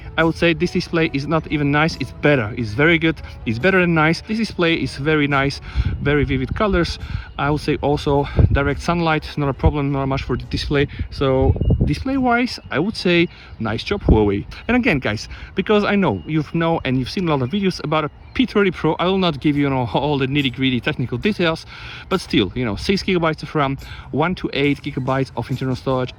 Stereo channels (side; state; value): both; identical; correlation 1.00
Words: I would say this display is not even nice, it's better, it's very good, it's better than nice. This display is very nice, very vivid colors. I would say also direct sunlight, not a problem, not much for the display. So display wise, I would say nice job, Huawei. And again, guys, because I know you've seen a lot of videos about a P30 Pro, I will not give you, all the nitty-gritty technical details, but still, 6 gigabytes of RAM, 1 to 8 gigabytes of internal storage,